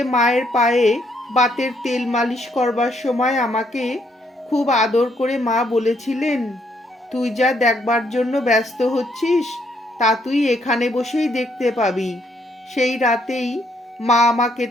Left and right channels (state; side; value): normal; both; correlation 0.72